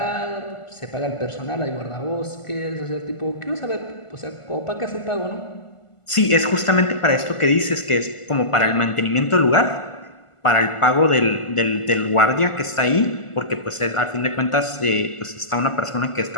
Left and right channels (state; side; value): late; right; 1.5 ms